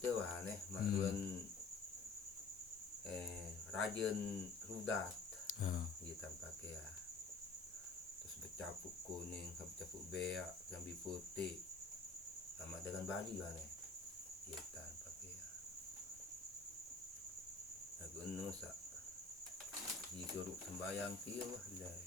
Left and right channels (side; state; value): right; quieter; 4.1 dB